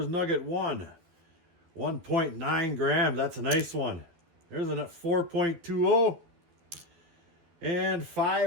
nugget 1, 1.9 grams. That's a nice one. There's a 4.20 and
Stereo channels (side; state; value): left; late; 12 ms